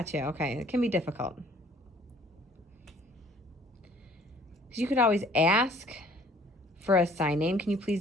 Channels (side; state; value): both; normal; correlation 0.56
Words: Okay, it can be difficult. Because you could always ask for a sign name. Can you